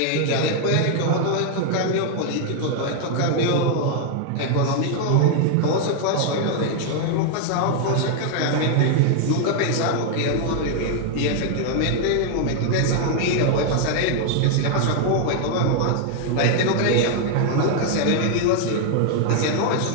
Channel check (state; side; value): different; both; correlation 0.00